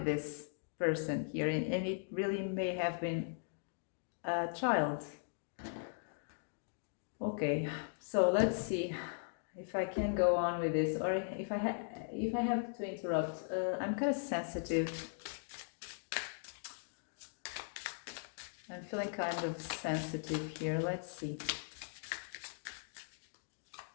this person here, and it really may have been a child. Okay, so let's see if I can go on with this, or if I have to interrupt. I'm kind of sensitive. I'm feeling kind of sensitive here. Let's see.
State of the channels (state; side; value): silent; right; digital silence